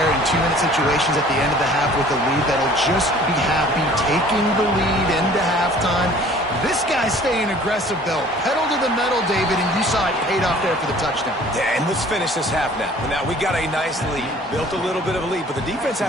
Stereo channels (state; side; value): normal; both; correlation 0.51